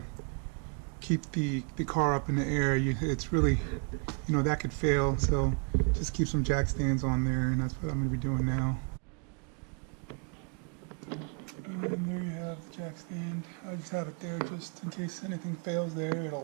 keep the car up in the air. It's really, that could fail. So just keep some jack stands on there, and that's what I'm going to be doing now. And there you have the jack stand. I just have it there just in case anything fails there.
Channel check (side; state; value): left; quieter; 37.8 dB